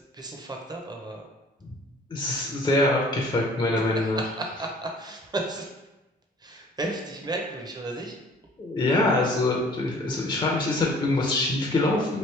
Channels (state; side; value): normal; both; correlation 0.52